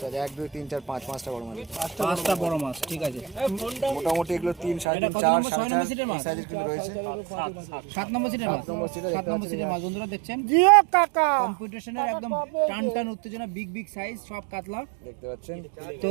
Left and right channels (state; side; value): drops out; left; at 4.9 s